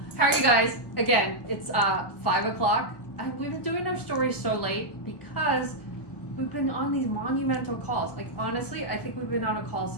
How are you guys? Again, it's 5 o'clock. We've been doing our stories so late because we've been on these monumental calls. Like honestly, I think we've been on a call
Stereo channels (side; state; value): right; late; 1.2 ms